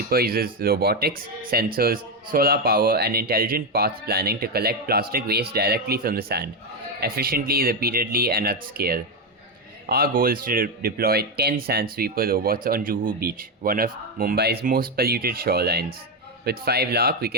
uses robotics, sensors, solar power, and intelligent path planning to collect plastic waste directly from the sand, efficiently, repeatedly, and at scale. Our goal is to deploy 10 Sand Sweeper robots on Juhu beach, one of Mumbai's most polluted shorelines. With 5 lakh, we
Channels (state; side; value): normal; both; correlation 0.08